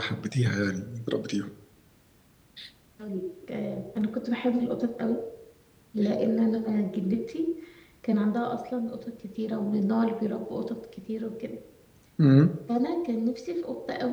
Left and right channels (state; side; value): identical; both; correlation 1.00